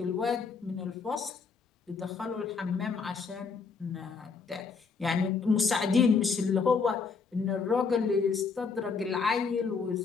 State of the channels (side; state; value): right; quieter; 5.2 dB